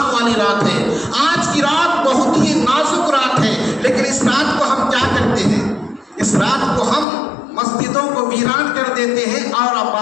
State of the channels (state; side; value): drops out; right; at 7.1 s